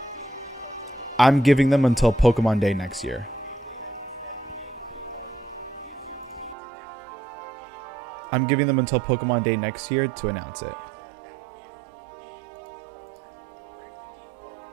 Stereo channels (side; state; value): left; drops out; at 6.6 s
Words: I'm giving them until Pokemon Day next year. I'm giving them until Pokemon Day next year to announce it.